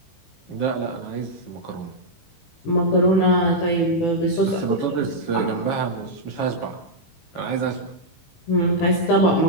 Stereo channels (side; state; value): right; late; 21 ms